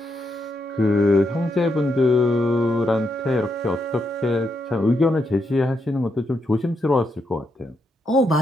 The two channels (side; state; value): both; normal; correlation 0.81